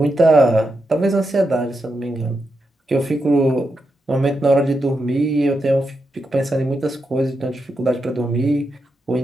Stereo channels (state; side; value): normal; both; correlation 0.85